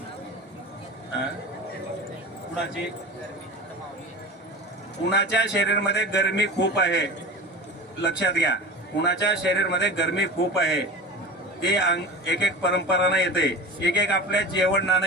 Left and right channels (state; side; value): normal; both; correlation 0.32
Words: कुणाच्या शरीरामध्ये गरमी खूप आहे, लक्षात घ्या. कुणाच्या शरीरामध्ये गरमी खूप आहे ते एक परंपरानं येते, एक आपल्या जेवणानं